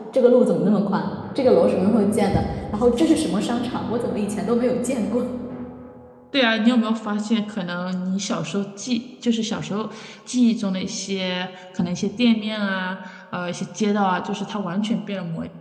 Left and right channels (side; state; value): both; identical; correlation 1.00